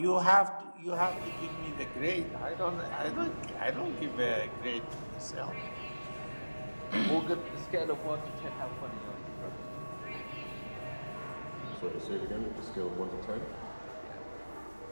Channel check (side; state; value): both; inverted; correlation -1.00